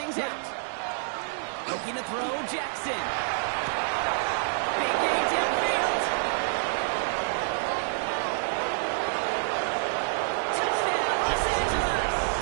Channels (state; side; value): silent; left; digital silence